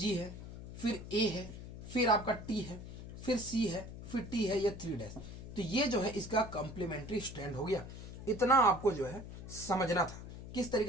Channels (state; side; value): noise; left; hum, 11 dB below the sound